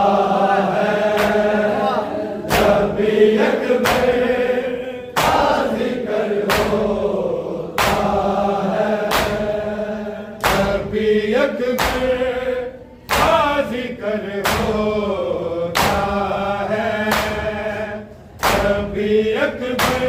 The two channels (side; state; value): both; identical; correlation 1.00